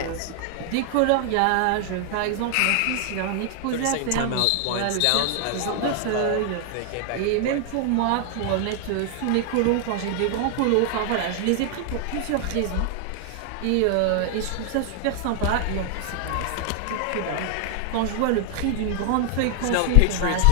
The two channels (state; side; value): different; both; correlation 0.00